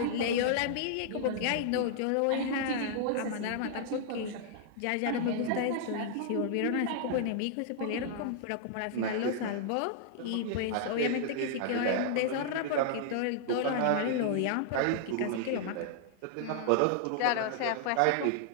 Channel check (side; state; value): both; different; correlation -0.01